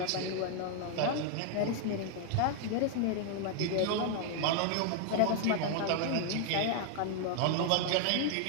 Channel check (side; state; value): both; different; correlation 0.00